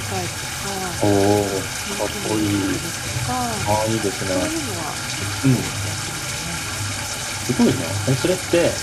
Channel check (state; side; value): identical; both; correlation 1.00